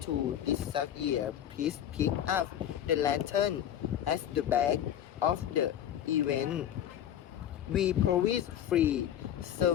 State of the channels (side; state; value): right; quieter; 10.5 dB